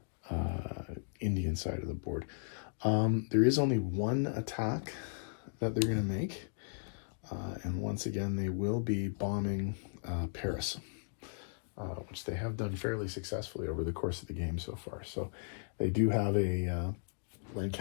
Indian side of the board. There is only one attack that they're going to make, and once again they will be bombing Paris, which they have done fairly successfully over the course of the game so far. So they do have a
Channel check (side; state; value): right; silent; digital silence